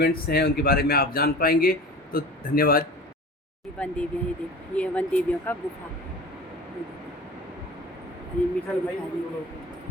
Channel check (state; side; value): normal; both; correlation 0.38